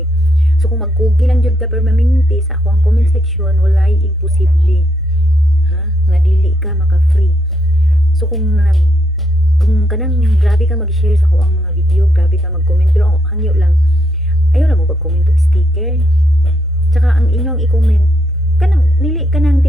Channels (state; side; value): normal; both; correlation 0.77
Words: So kung magkugi lang jud ka permanente sa ako ang comment section, walay imposible. Ha? Nga dili ka maka-free. So kung kanang grabe ka mag-share sa ako ang mga video, grabe ka mag-comment, pero hangyo lang. Ayaw lang mo pag-comment og sticker. Tsaka ang inyong i-comment, kanang dili kanang